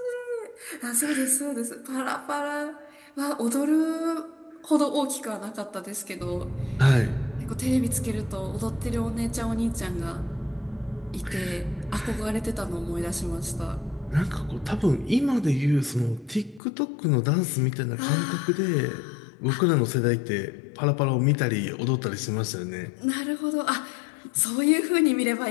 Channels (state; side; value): drops out; right; at 16.6 s